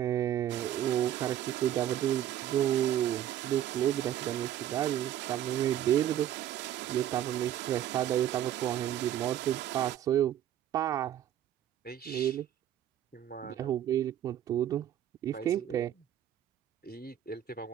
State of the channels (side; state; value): left; quieter; 11.5 dB